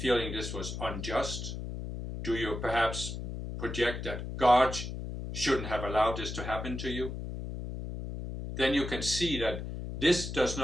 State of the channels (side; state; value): left; noise; hum, 6 dB below the sound